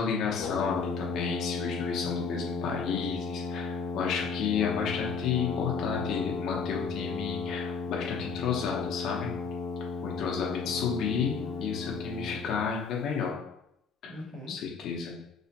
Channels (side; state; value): right; quieter; 5.5 dB